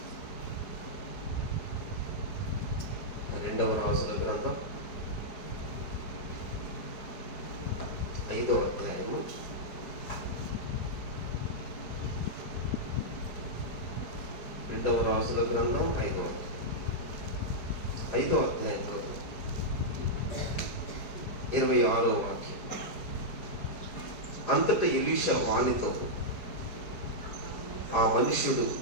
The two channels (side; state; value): right; late; 4.8 ms